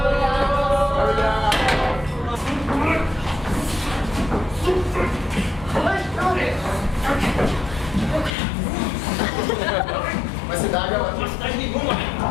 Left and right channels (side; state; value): right; drops out; at 8.3 s